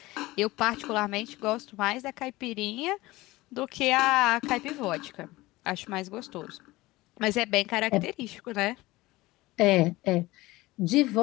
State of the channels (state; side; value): quieter; right; 19.5 dB